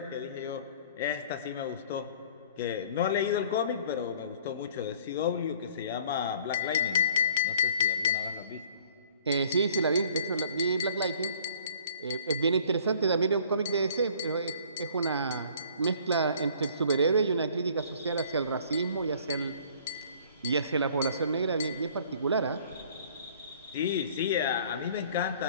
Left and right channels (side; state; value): both; inverted; correlation -0.53